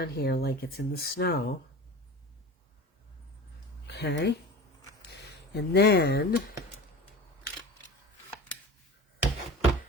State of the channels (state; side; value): normal; both; correlation 0.35